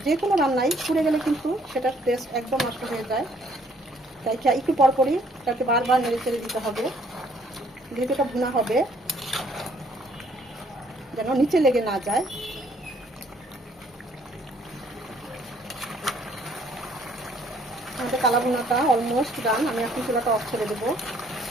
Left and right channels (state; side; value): normal; both; correlation 0.63